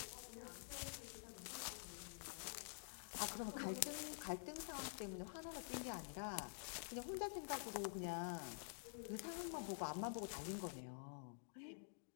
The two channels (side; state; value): right; silent; digital silence